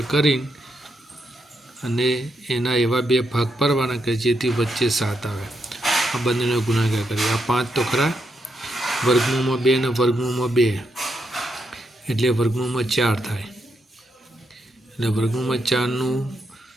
કરીને અને એના એવા બે ભાગ પાડવાના કે જેથી વચ્ચે 7 આવે। આ બંનેનો ગુણાકાર કરીએ, આ 5 તો ખરા, વર્ગમૂળમાં 2 અને વર્ગમૂળમાં 2 એટલે વર્ગમૂળમાં 4 થાય, એટલે વર્ગમૂળમાં 4નું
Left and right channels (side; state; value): both; normal; correlation 0.80